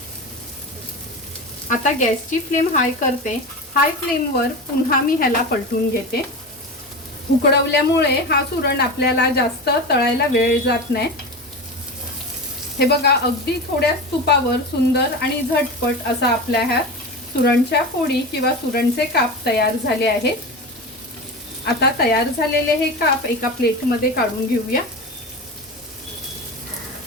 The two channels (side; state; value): both; normal; correlation 0.25